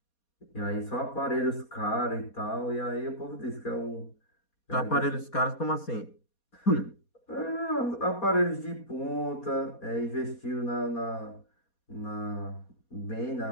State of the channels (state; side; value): late; right; 4.2 ms